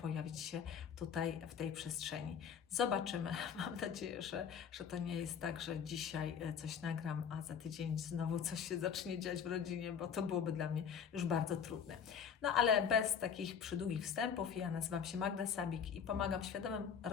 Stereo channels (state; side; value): quieter; right; 7.4 dB